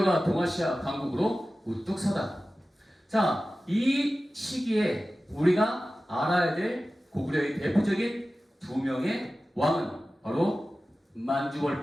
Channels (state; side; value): normal; both; correlation 0.95